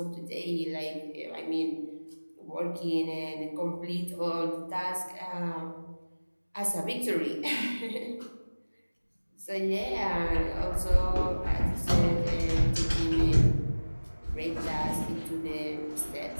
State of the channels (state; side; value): inverted; both; correlation -1.00